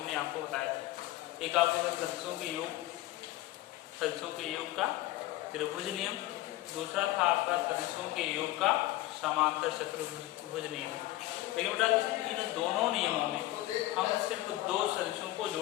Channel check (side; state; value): right; quieter; 16.4 dB